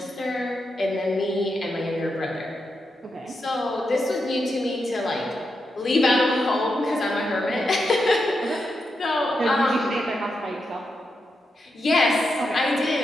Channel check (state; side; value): normal; both; correlation 0.86